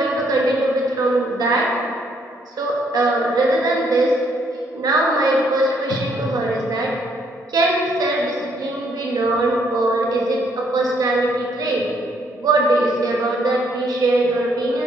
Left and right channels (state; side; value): normal; both; correlation 0.70